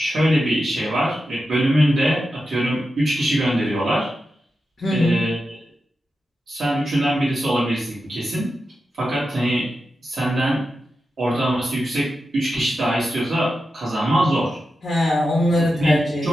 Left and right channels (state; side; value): normal; both; correlation 0.90